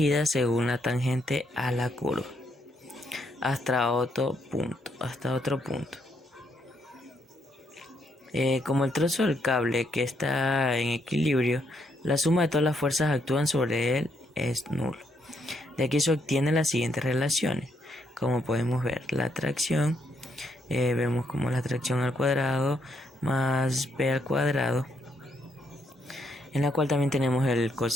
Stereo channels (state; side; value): normal; both; correlation 0.75